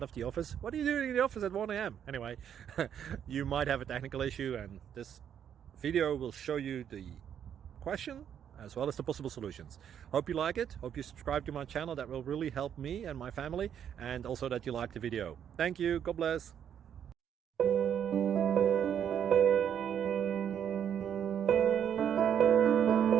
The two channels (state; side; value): quieter; left; 9.0 dB